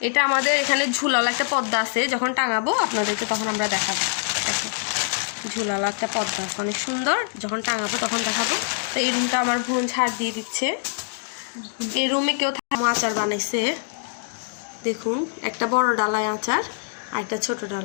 এটা আমাদের এখানে ঝুলালো একটা পর্দা আছে, যখন টাঙাবো আপনাদেরকে তখন আমরা দেখাবো। দেখো ঝুলালো একটা পর্দা আছে অনেক সুন্দর, যখন টাঙাবো তখন দেখাবো। তো এই রুমটা আমার বোন ঝাড় দিয়ে দিচ্ছে। এই রুমে কেউ আচার বানাইছে দেখুন, একটা বড় ডালায় আচার আর একটা ছোট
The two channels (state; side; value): silent; right; digital silence